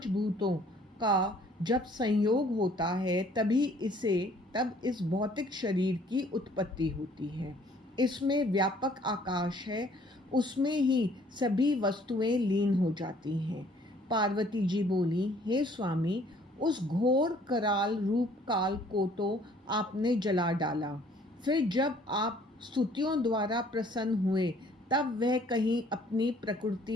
भूतों का जब संयोग होता है तब इस भौतिक शरीर की उत्पत्ति होती है। इसमें व्यापक आकाश है, उसमें ही सभी वस्तुएं लीन हो जाती हैं। पार्वती जी बोली, हे स्वामी, उस घोर कराल रूप काल को तो आपने जला डाला, फिर जब आप स्तुतियों द्वारा प्रसन्न हुए तब वह कहीं अपनी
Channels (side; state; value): both; normal; correlation 0.58